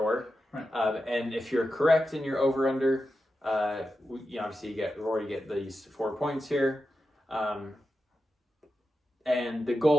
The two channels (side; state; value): both; normal; correlation 0.90